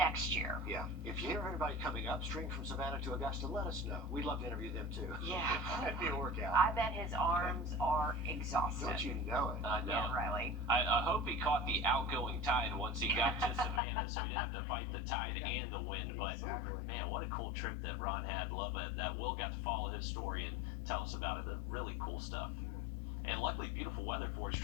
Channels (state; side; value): drops out; right; at 13.8 s